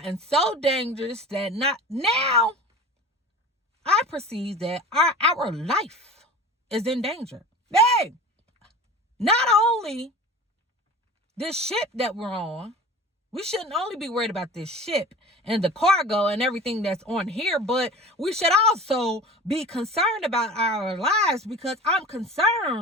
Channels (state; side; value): normal; both; correlation 0.37